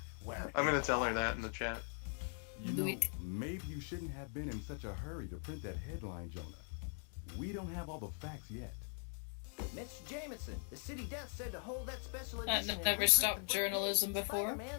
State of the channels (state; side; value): silent; right; 50 dB below the other